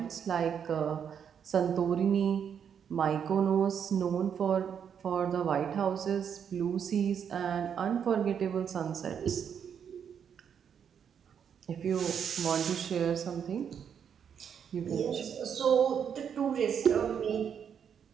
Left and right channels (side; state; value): left; quieter; 7.8 dB